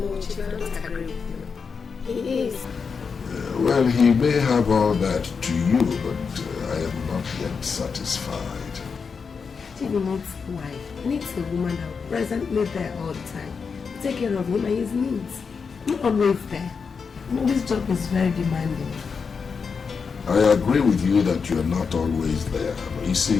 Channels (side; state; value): right; quieter; 5.6 dB